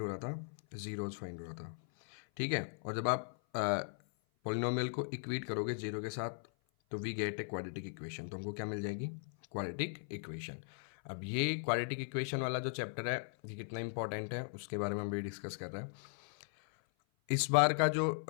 हो रहा था, जीरोज फाइंड हो रहा था, ठीक है। और जब आप पॉलिनोमियल को इक्वेट करोगे जीरो के साथ तो we get a quadratic equation, तो हमको क्या मिल जाएगी, क्वाड्रेटिक इक्वेशन। अब ये क्वाड्रेटिक इक्वेशन वाला जो चैप्टर है ये कितना इंपॉर्टेंट है उसके बारे में हम भी डिस्कस कर रहे हैं। इस बार का जो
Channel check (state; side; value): silent; right; 52 dB below the other